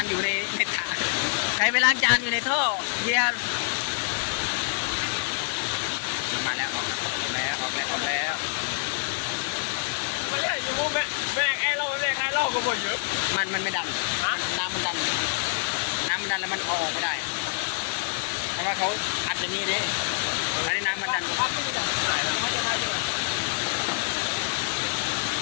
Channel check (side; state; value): right; silent; 60 dB below the other